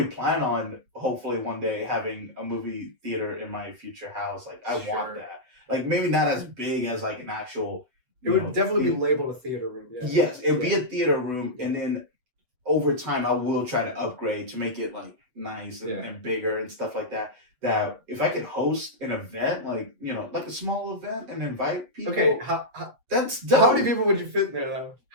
plan on, hopefully, one day having a movie theater in my future house. Like, I want that. Like, maybe not as big as, like, an actual... It would definitely be labeled a theater room, yeah. Yes, it would be a theater room, and then over time, I will try to upgrade to make it, like, nice and bigger and stuff like that. That if I could host an event, like, like a small event and invite people... Okay, that's dope. How many people would you fit in there, though?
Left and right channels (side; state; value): left; late; 8.0 ms